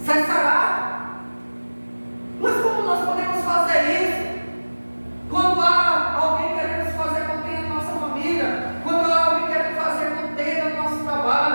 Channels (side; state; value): both; inverted; correlation -1.00